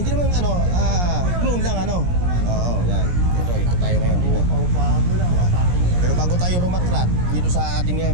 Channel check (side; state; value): left; late; 17 ms